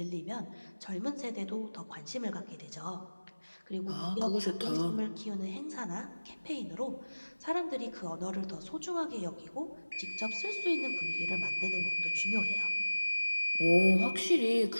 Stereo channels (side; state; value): both; inverted; correlation -1.00